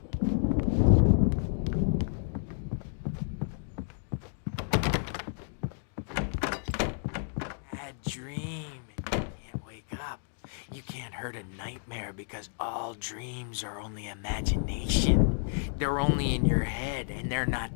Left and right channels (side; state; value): right; silent; digital silence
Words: dream. Can't wake up. You can't hurt a nightmare because all dreams are only imagination. They're only in your head, and they're not